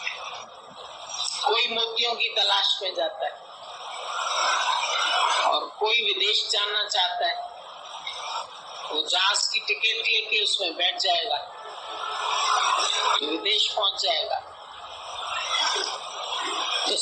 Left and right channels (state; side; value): identical; both; correlation 1.00